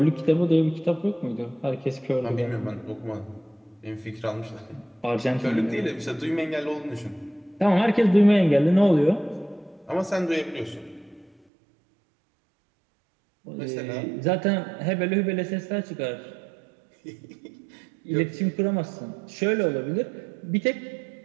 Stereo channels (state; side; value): drops out; left; at 11.3 s